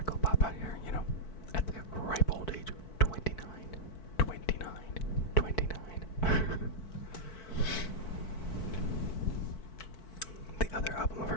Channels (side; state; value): right; late; 4.5 ms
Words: pop out here, you know, at the ripe old age of 29. The other album of